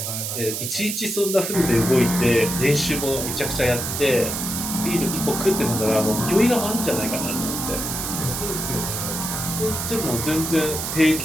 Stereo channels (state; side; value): noise; right; hiss, 4 dB below the sound